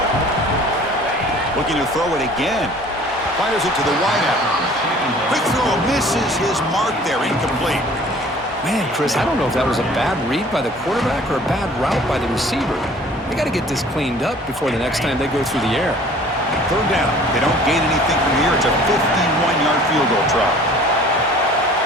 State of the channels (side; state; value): both; normal; correlation 0.50